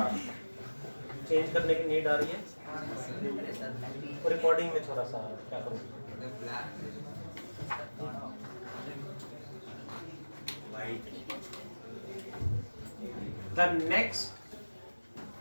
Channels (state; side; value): inverted; both; correlation -1.00